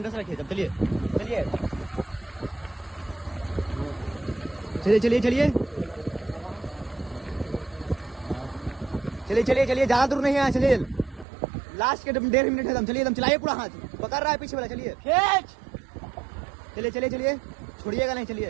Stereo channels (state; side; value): drops out; left; at 11.2 s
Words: रखिए, चलिए ज्यादा दूर नहीं है, चलिए लास्ट के 1.5 मिनट है दम। चलिए एकदम चलाइए, पूरा हाथ पकड़ रहा है पीछे वाला, चलिए चलिए छोड़िएगा नहीं,